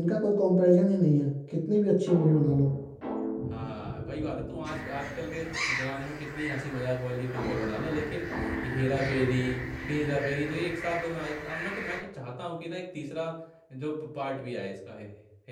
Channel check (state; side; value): identical; both; correlation 1.00